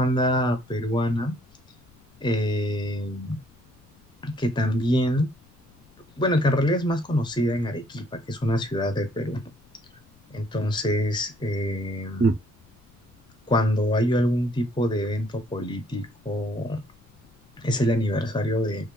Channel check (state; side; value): noise; left; rumble, 29 dB below the sound